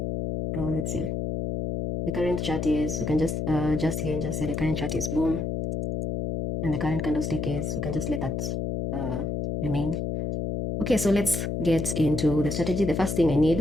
Let's see. The current chart is, we can just here and just say the current chart is boom, and the current candlestick is, we can just let that remain. Okay, so let's get into the strategy. The first thing I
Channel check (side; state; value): left; noise; hum, 2 dB below the sound